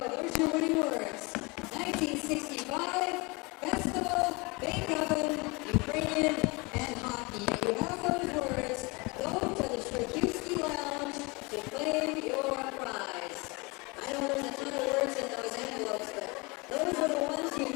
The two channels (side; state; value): right; quieter; 27.1 dB